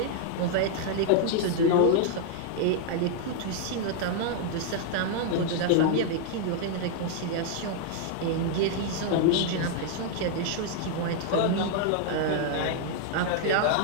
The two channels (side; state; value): both; different; correlation 0.00